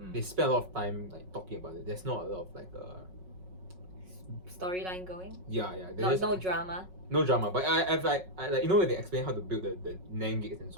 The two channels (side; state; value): left; late; 5.4 ms